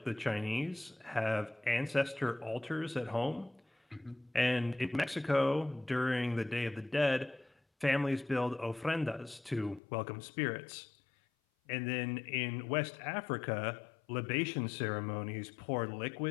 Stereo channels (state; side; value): drops out; right; at 9.8 s